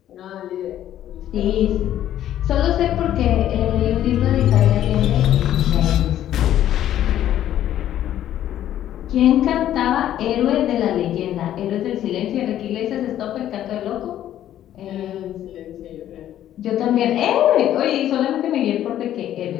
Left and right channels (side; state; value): right; quieter; 11.8 dB